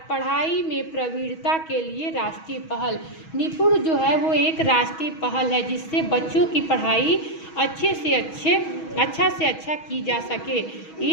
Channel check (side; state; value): right; late; 6.2 ms